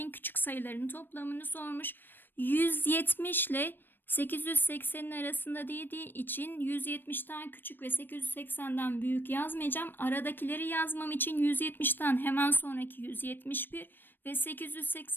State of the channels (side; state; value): right; late; 0.095 ms